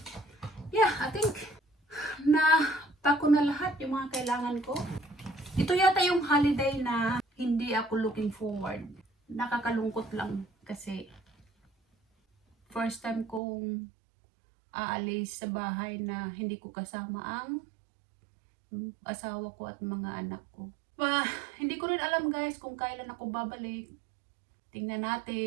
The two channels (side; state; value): left; drops out; at 13.4 s